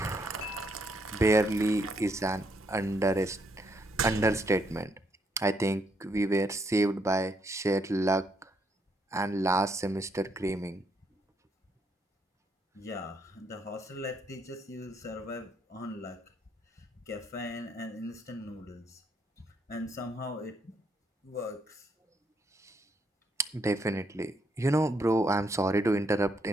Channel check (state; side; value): normal; both; correlation 0.73